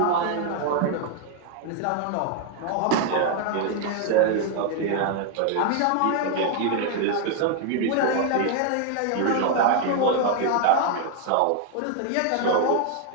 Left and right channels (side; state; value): both; different; correlation 0.00